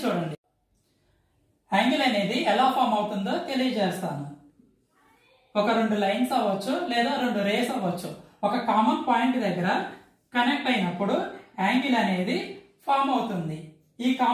చూడండి. యాంగిల్ అనేది ఎలా ఫామ్ అవుతుందో తెలియజేస్తాను. ఒక రెండు లైన్స్ అవ్వచ్చు లేదా రెండు రేస్ అవ్వచ్చు. ఒక కామన్ పాయింట్ దగ్గర కనెక్ట్ అయినప్పుడు యాంగిల్ అనేది ఫామ్ అవుతుంది. ఈ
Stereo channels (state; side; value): identical; both; correlation 1.00